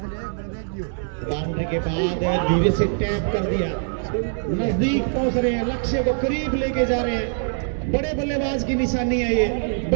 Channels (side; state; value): left; silent; 63 dB below the other